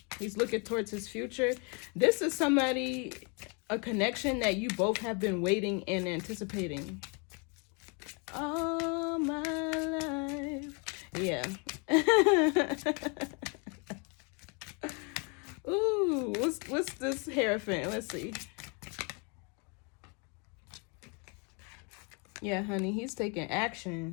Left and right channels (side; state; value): right; quieter; 34.4 dB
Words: He's looking towards his future. This is somebody, a connection that you both have been waiting and anticipating all my life. Yeah. Ooh, what's this Hierophant? Let's see. Yeah, honey, he's taking